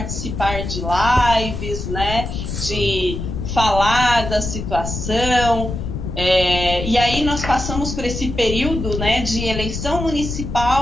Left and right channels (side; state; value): left; noise; rumble, 5 dB below the sound